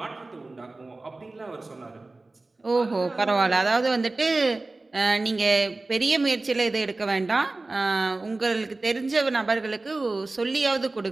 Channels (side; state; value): left; quieter; 3.2 dB